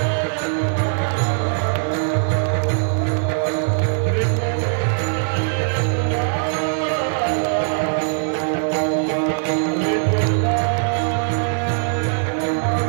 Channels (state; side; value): silent; left; digital silence